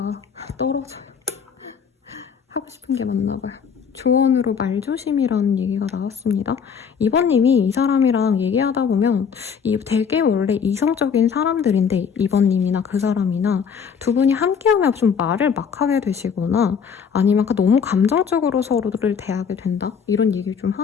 떨어져요. 하고 싶은 게 맞나 봐요. 조언으로 말조심이라는 얘기가 나왔습니다. 2번님이 이 사람이랑 얘기하다 보면 되게 원래 이성적인 사람들인데 2번님이나 그 사람이나 두 분이 함께하면 좀 말을 막 하게 되시거나 아니면 너무 감정적으로 서로를 대하게 된다? 이런 얘기를 좀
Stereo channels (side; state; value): right; quieter; 6.7 dB